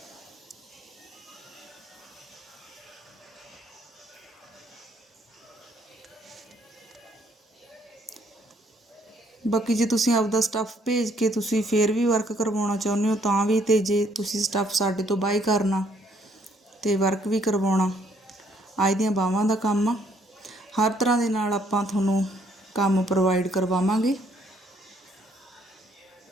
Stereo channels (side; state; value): both; normal; correlation 0.67